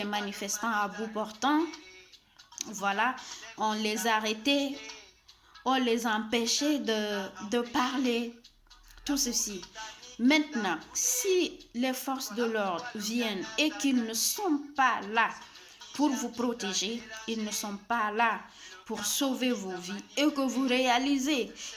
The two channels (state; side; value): identical; both; correlation 1.00